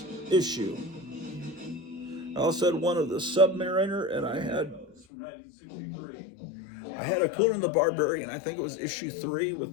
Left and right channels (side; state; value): right; drops out; at 5.1 s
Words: issue. I also had one of the Submariner, and I had a Conan the Barbarian. I think it was issue 3